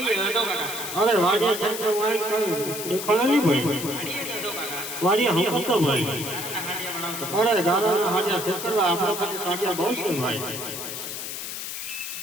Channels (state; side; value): noise; left; hiss, 6 dB below the sound